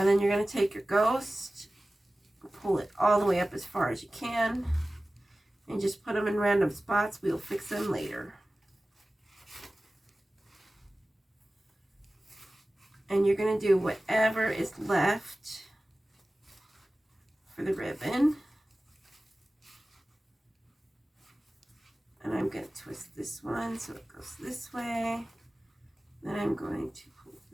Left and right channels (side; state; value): both; normal; correlation 0.97